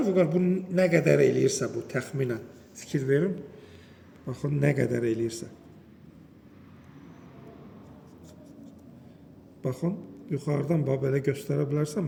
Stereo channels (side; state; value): both; identical; correlation 1.00